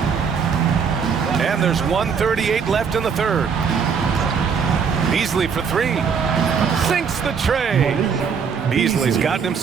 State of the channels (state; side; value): quieter; left; 6.3 dB